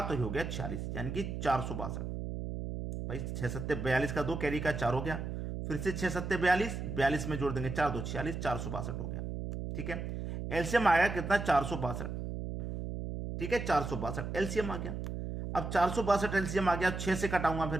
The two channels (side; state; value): right; noise; hum, 5 dB below the sound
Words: तो ये हो गया 46, यानी कि 462 भाई। 6 सत्ते 42 का 2, कैरी का 4 हो गया, फिर से 6 सत्ते 42, 42 में जोड़ देंगे 4 2 46, 462 हो गया, ठीक है। एलसीएम आया कितना, 462, ठीक है, 462 एलसीएम आ गया। अब 462 एलसीएम आ गया, 6 से कटाऊंगा, फिर